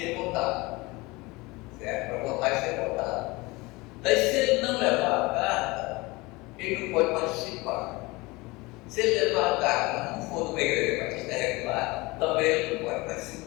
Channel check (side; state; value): right; quieter; 23.2 dB